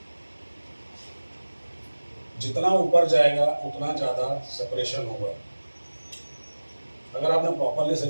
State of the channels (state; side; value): inverted; both; correlation -1.00